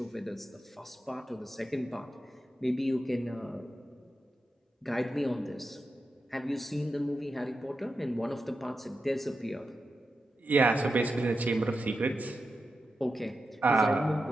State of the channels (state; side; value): normal; both; correlation 0.89